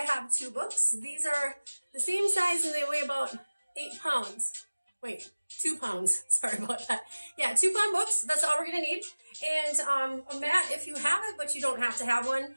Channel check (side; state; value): both; inverted; correlation -1.00